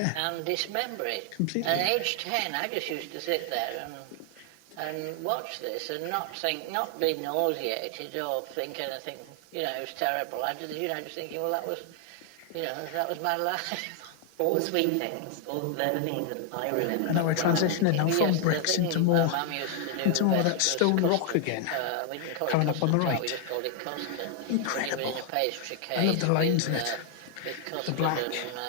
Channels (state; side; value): different; both; correlation 0.00